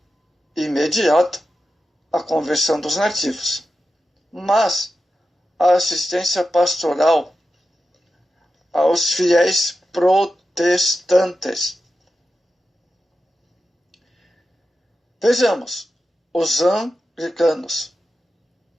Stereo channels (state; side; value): normal; both; correlation 0.91